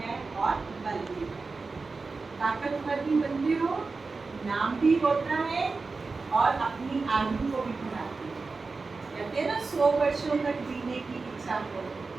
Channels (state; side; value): quieter; left; 4.1 dB